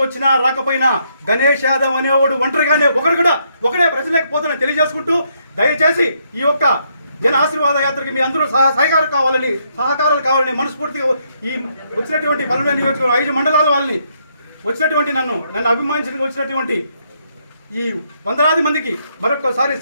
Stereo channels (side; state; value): both; inverted; correlation -0.74